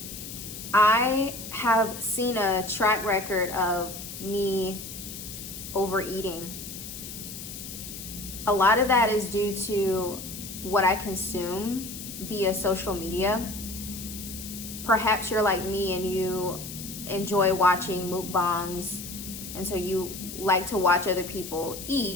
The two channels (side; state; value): left; noise; hiss, 10 dB below the sound